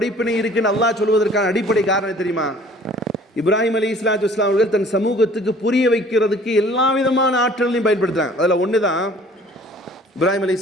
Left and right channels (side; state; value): both; normal; correlation 0.52